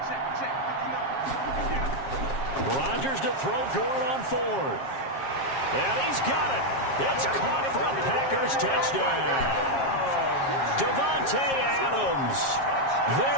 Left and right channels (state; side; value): late; right; 7.4 ms